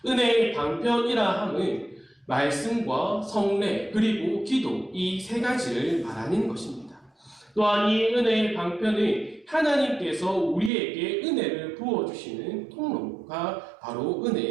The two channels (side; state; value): left; drops out; at 10.7 s